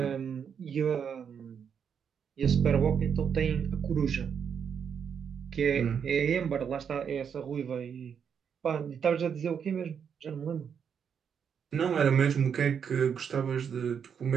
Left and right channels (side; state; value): left; quieter; 7.3 dB